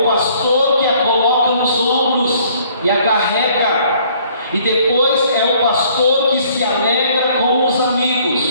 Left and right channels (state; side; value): inverted; both; correlation -0.60